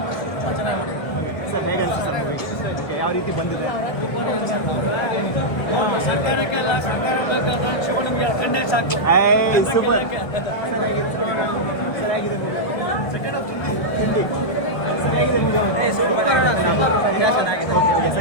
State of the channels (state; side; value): late; right; 1.2 ms